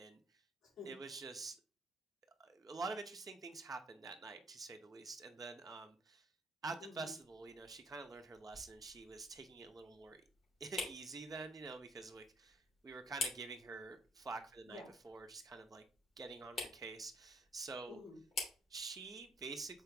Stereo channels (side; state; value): both; normal; correlation 0.64